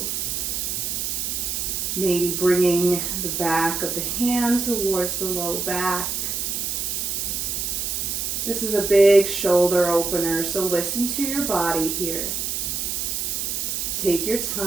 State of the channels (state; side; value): noise; right; hiss, 2 dB below the sound